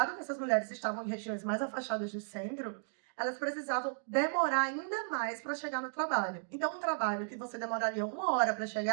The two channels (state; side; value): silent; left; digital silence